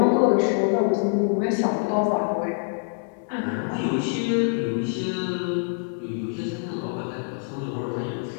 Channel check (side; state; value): right; silent; 58 dB below the other